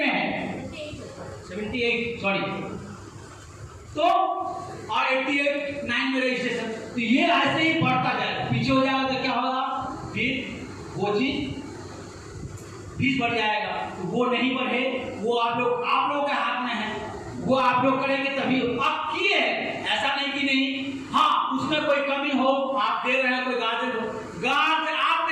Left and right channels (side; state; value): both; identical; correlation 1.00